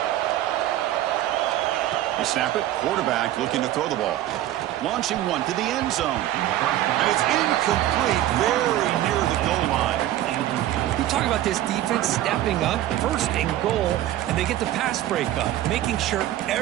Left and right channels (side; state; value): left; quieter; 13.6 dB